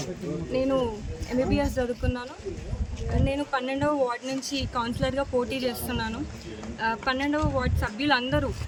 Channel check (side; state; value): both; identical; correlation 1.00